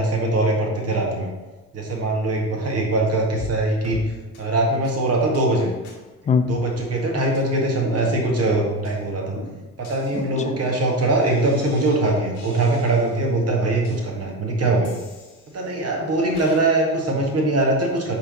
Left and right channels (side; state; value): both; normal; correlation 0.20